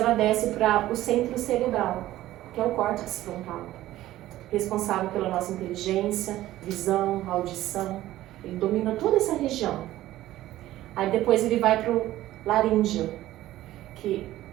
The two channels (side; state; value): left; quieter; 15.0 dB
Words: desce para o centro cerebral, que é o córtex frontal, responsável pela nossa inteligência, visão, audição. Ele domina toda essa região. Aí depois ele vai para o laríngeo, que